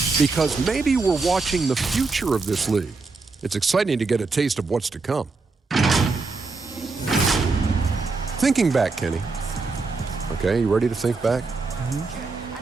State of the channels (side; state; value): left; quieter; 4.0 dB